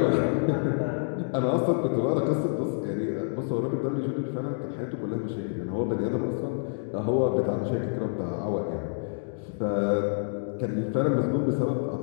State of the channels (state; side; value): silent; right; digital silence